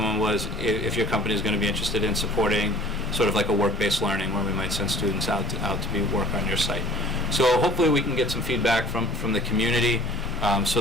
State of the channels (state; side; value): normal; both; correlation 0.49